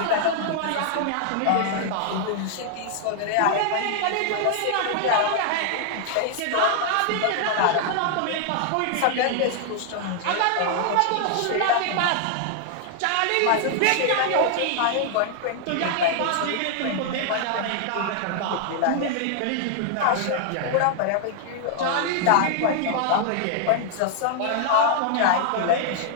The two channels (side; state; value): both; different; correlation 0.00